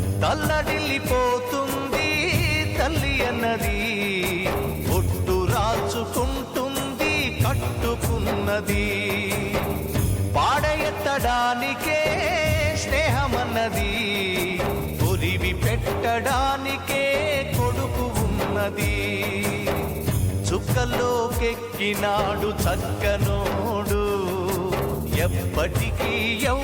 తల్లడిల్లిపోతుంది తల్లి అన్నది, ఒట్టు రాచుకుంటుంది కట్టుకున్నది. పాడెత్తడానికే స్నేహమన్నది, కొరివి పెట్టడానికే కొడుకు ఉన్నది. చుక్కల్లోకెక్కినాడు చక్కనోడు, ఎప్పటికీ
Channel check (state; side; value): identical; both; correlation 1.00